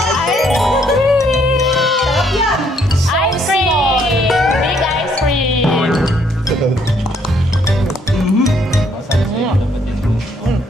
Sarap yan! Ice cream! Big ice cream!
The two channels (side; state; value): both; normal; correlation 0.68